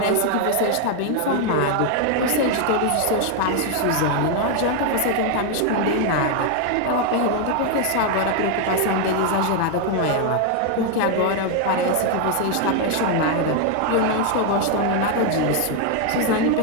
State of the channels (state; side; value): different; both; correlation 0.01